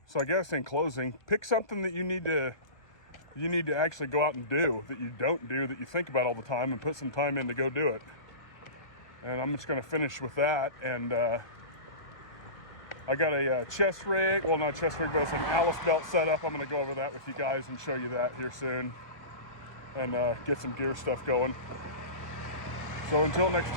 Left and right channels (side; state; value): right; late; 1.2 ms